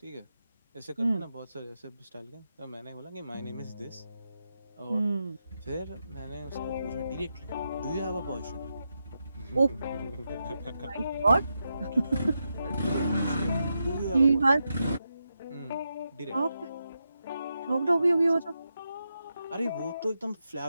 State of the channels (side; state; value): both; inverted; correlation -0.87